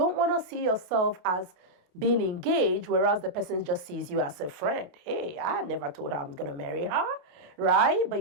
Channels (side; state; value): left; late; 28 ms